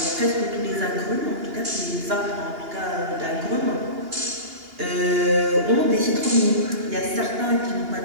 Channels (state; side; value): late; left; 2.8 ms